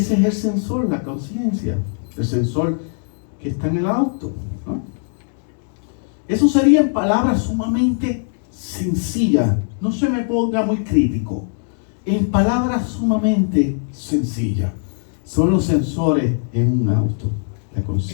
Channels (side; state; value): right; silent; digital silence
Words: es el sensor, la conciencia, el sensor que está en el auto, ¿no? Eso sería en palabras sumamente sencillas. No se me ponga muy crítico. En palabras sumamente sencillas. Son los sensores en un auto, la